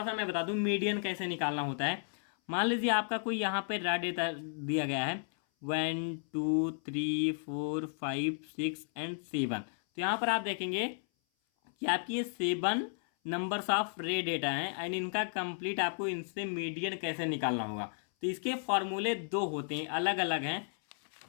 सा मैं बता दूं मीडियन कैसे निकालना होता है। मान लीजिए आपका कोई यहाँ पे रा डेटा दिया गया है 1 2 3 4 5 6 एंड 7। तो यहाँ पर आप देखेंगे कि आपकी ये 7 नंबर्स ऑफ रे डेटा हैं एंड इनका कंप्लीट आपको इनसे मीडियन कैसे निकालना होगा। तो इसके फॉर्मूले 2 होते हैं, अलग अलग हैं।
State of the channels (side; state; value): right; silent; 55 dB below the other